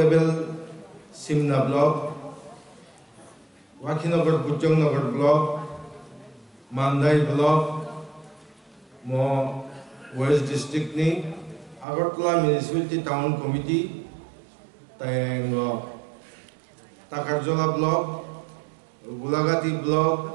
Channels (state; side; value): drops out; left; at 11.9 s